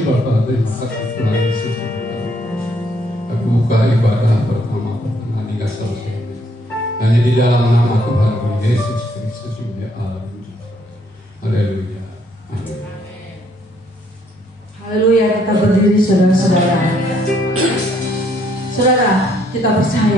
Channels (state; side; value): normal; both; correlation 0.68